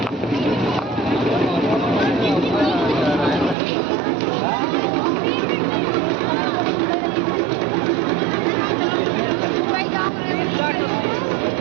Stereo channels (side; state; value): left; drops out; at 3.6 s